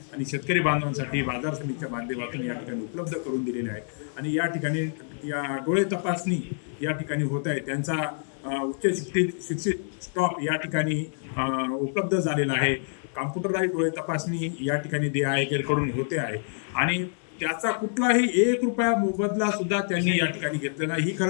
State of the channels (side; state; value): right; silent; digital silence